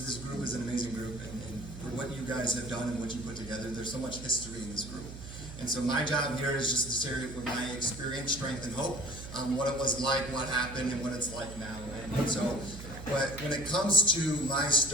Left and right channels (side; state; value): right; noise; hum, 12 dB below the sound